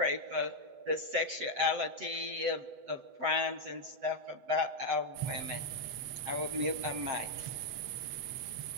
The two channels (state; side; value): late; left; 8.0 ms